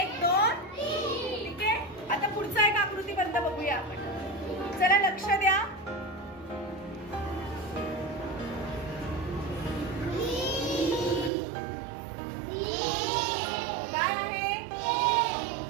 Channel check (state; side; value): drops out; left; at 11.3 s